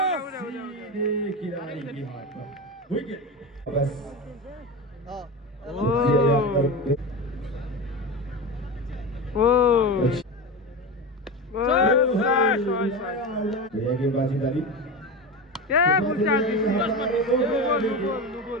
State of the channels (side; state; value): both; normal; correlation 0.23